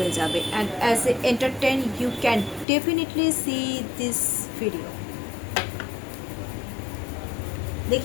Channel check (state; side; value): drops out; right; at 2.7 s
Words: যাবে, and as a entertain you can definitely see this video.